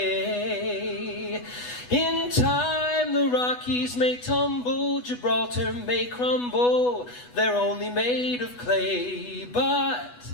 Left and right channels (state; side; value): late; right; 8.1 ms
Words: In time the Rockies may tumble, Gibraltar may crumble. They're only made of clay, but